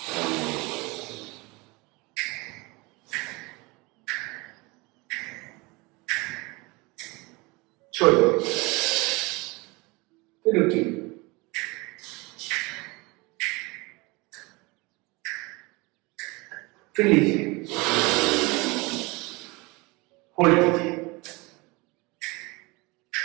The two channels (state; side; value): quieter; left; 25.2 dB